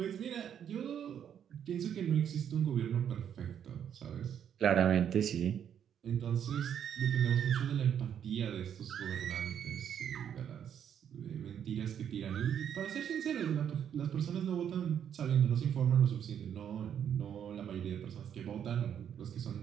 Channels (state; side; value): quieter; left; 8.9 dB